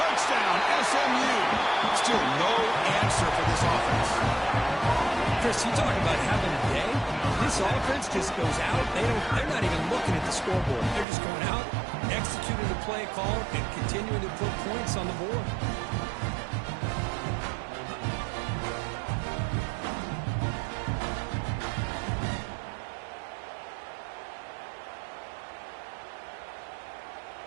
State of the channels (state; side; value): drops out; left; at 11.1 s